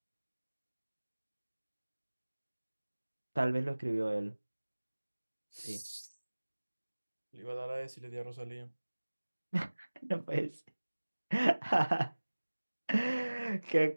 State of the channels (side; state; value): both; inverted; correlation -1.00